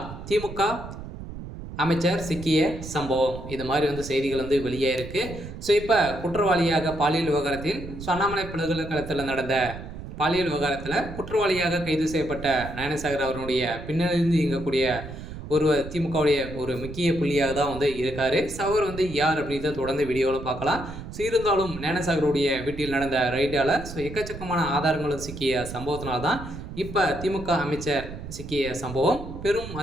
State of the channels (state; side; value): noise; right; rumble, 11 dB below the sound